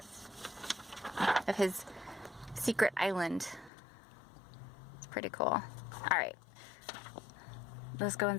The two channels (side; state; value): right; drops out; at 3.7 s